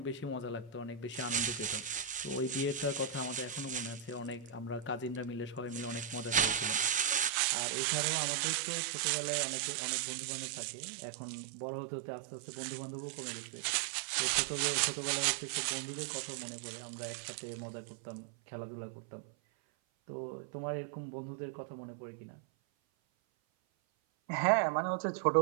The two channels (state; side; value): drops out; left; at 7.3 s